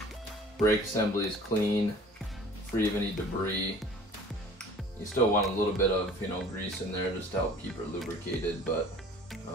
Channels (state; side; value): normal; both; correlation 0.48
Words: brake assembly is clean, free of any debris. You still want a little bit of, you know, grease in there just to help keep it lubricated, but